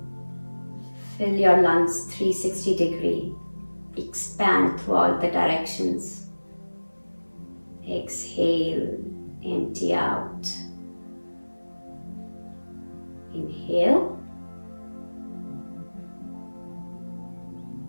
Fill your lungs 360 degree. Expand through all the directions. Exhale, empty out. Inhale.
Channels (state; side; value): inverted; both; correlation -1.00